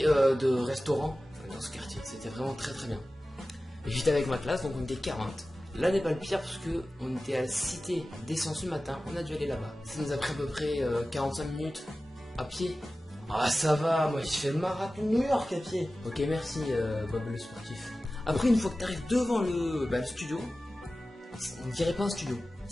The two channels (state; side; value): normal; both; correlation 0.95